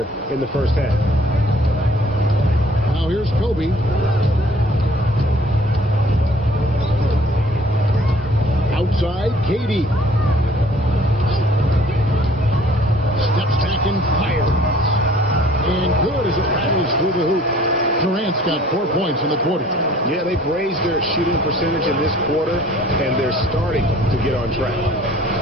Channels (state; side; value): normal; both; correlation 0.55